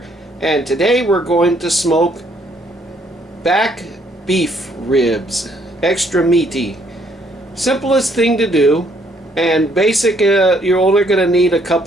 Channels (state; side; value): normal; both; correlation 0.68